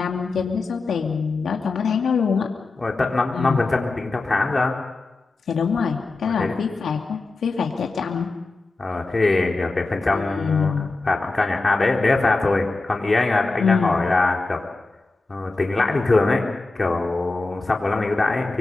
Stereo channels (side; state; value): right; quieter; 3.4 dB